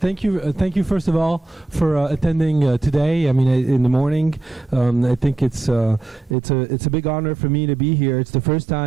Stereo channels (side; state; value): left; drops out; at 6.4 s